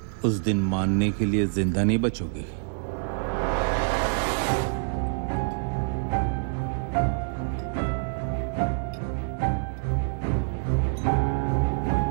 उस दिन मानने के लिए जिंदा नहीं बचोगे.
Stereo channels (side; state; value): left; silent; digital silence